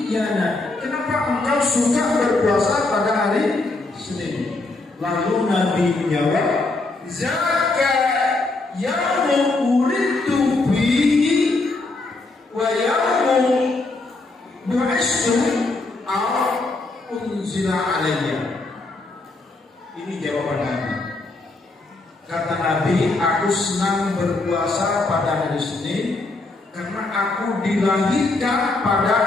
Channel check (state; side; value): quieter; right; 3.2 dB